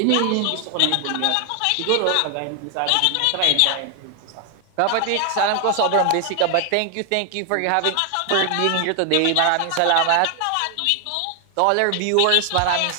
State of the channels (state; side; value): different; both; correlation 0.00